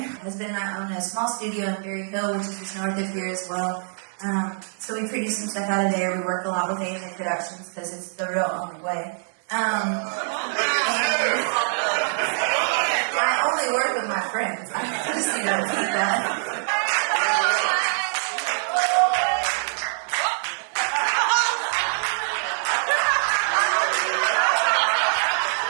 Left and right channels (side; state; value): left; silent; 62 dB below the other